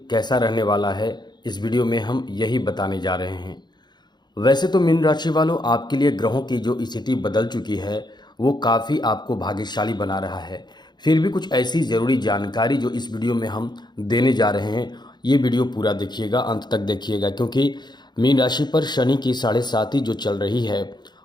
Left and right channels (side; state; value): right; late; 0.21 ms